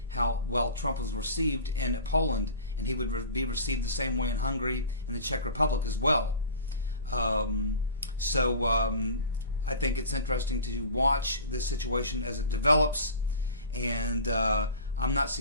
how well Trump was received in Poland, and he would be received the same way in Hungary and the Czech Republic as well. I think it's interesting to watch this situation as it develops, and I'm not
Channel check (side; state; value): both; inverted; correlation -0.38